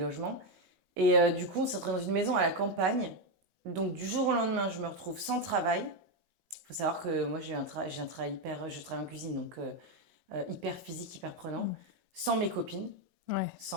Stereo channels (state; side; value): late; left; 16 ms